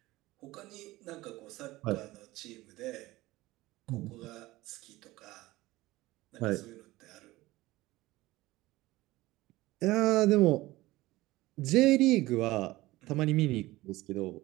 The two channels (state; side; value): quieter; left; 18.6 dB